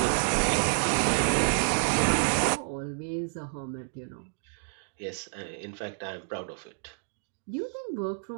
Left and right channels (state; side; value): silent; left; digital silence